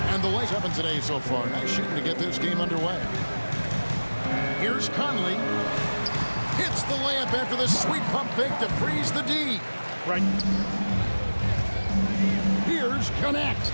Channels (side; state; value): both; inverted; correlation -1.00